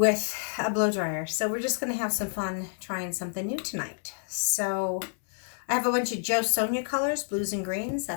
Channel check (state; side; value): silent; right; 59 dB below the other